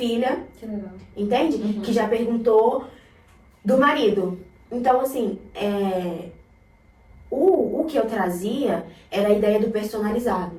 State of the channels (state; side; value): identical; both; correlation 1.00